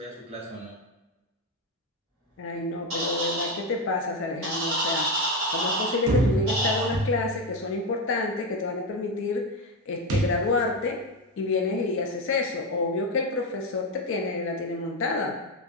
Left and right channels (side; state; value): both; normal; correlation 0.11